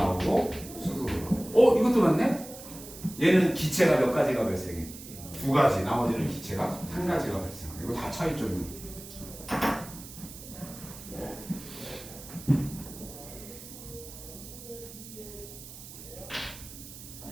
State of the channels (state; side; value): noise; right; hiss, 15 dB below the sound